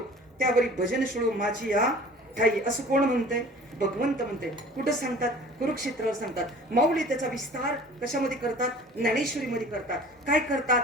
त्यावरी भजन शिळो माझी या ठाई. असं कोण म्हणतंय? भगवंत म्हणते. कुठं सांगतात? कुरुक्षेत्रावर सांगतात. माऊली त्याचा विस्तार कशामध्ये करतात? ज्ञानेश्वरीमध्ये करतात. काय करतात?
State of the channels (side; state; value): both; normal; correlation 0.45